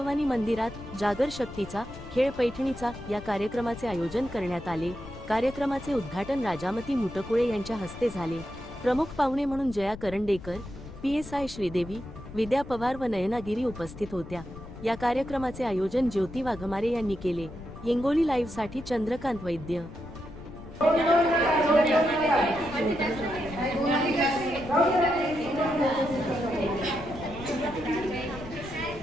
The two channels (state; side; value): noise; left; rumble, 14 dB below the sound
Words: मंदिरात जागर शक्तीचा खेळ पैठणीचा या कार्यक्रमाचे आयोजन करण्यात आले। कार्यक्रमाचे उद्घाटन राजामती मुटकुळे यांच्या हस्ते झाले। प्रमुख पाहुणे म्हणून जया करंडेकर, PSI श्रीदेवी, विद्या पवार व नयना गिरी उपस्थित होत्या। या कार्यक्रमाचे आयोजन ज्योती वाघमारे यांनी केले। हिंगोली लाईव्ह साठी चंद्रकांत वैद्य।